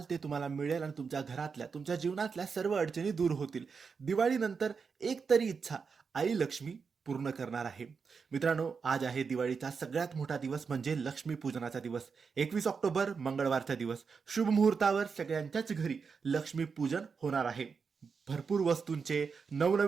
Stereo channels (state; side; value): quieter; left; 5.5 dB